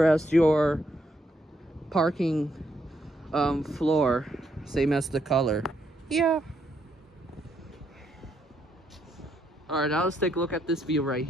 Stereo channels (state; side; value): normal; both; correlation 0.76